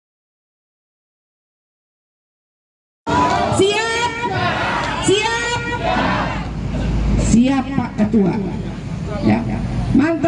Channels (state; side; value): identical; both; correlation 1.00